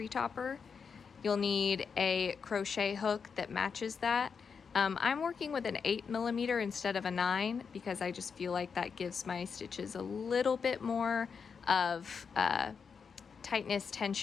topper. You'll need a crochet hook that matches that. I'm working with an 8mm instead of a 9 because I just feel like that gives my stitches a little bit more of tightness,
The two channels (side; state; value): right; quieter; 6.0 dB